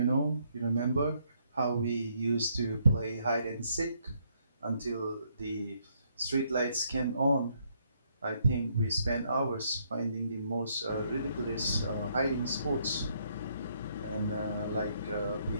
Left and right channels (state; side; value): inverted; both; correlation -0.71